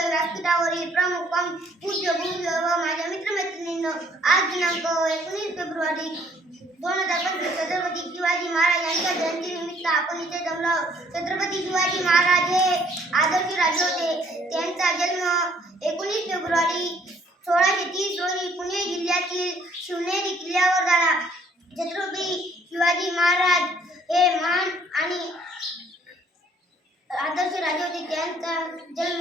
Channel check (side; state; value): both; normal; correlation 0.62